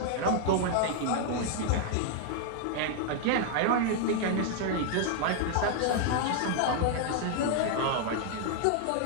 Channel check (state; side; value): different; both; correlation 0.00